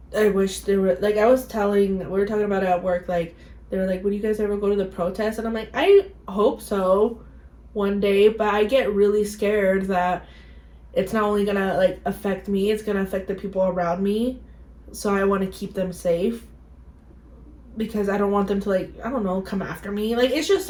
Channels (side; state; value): both; identical; correlation 1.00